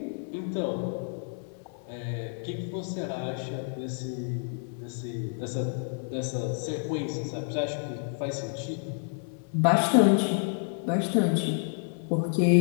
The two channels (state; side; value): silent; right; 58 dB below the other